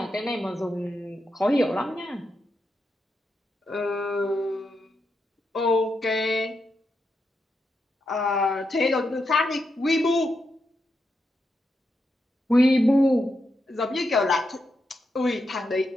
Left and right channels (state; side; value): normal; both; correlation 0.84